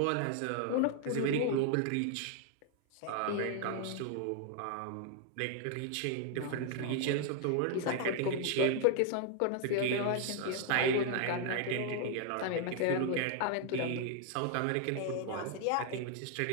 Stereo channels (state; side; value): different; both; correlation 0.00